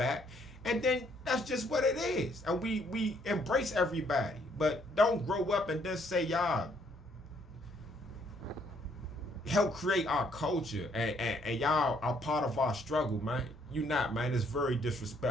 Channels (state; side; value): normal; both; correlation 0.68